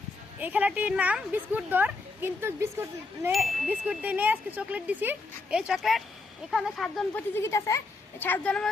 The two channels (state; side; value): quieter; right; 3.6 dB